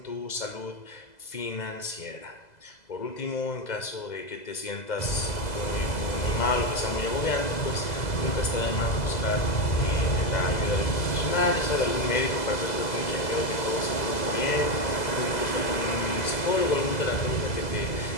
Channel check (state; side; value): late; right; 2.0 ms